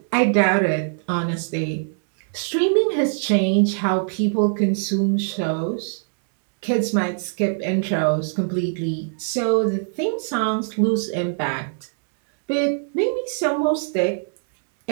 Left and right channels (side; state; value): left; silent; digital silence